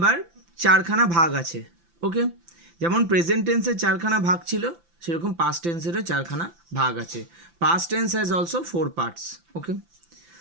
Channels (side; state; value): left; late; 5.9 ms